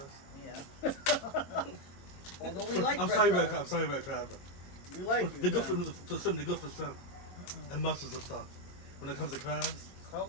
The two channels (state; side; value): late; right; 22 ms